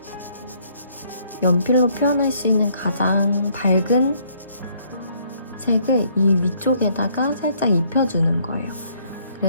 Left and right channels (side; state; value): both; inverted; correlation -0.65